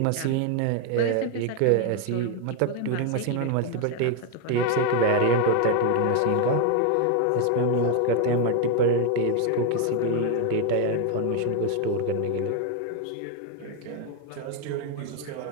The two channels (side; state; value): both; different; correlation 0.01